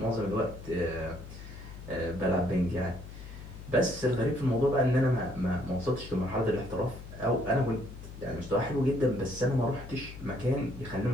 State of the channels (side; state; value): left; noise; hum, 13 dB below the sound